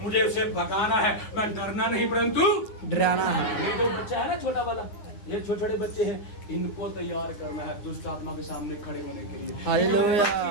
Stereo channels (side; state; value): right; late; 9.8 ms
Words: मुझे उसे भगाना है। मैं डरना नहीं परंतु डराना है। ये जो बच्चा है ना छोटा वाला, ये छोटे छोटे बच्चे हैं, इनको तैयार करना है दुष्ट आत्मा के सामने खड़े होने के लिए। हालेलुया।